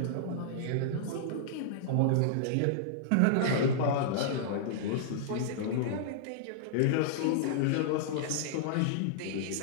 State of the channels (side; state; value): both; different; correlation -0.02